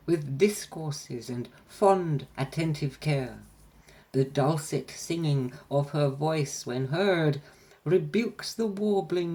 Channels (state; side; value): identical; both; correlation 1.00